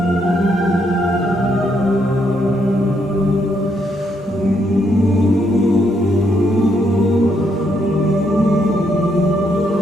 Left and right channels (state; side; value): normal; both; correlation 0.75